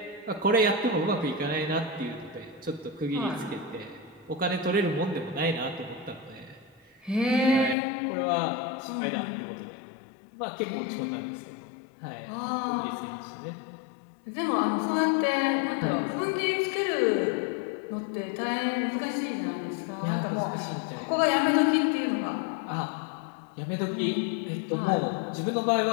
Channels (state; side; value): drops out; right; at 7.8 s